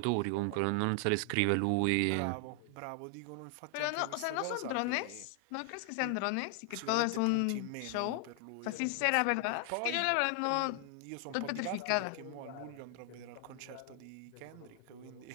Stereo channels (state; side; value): different; both; correlation 0.00